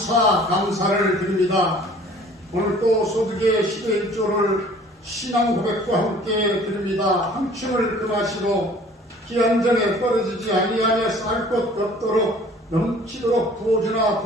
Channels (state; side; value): normal; both; correlation 0.51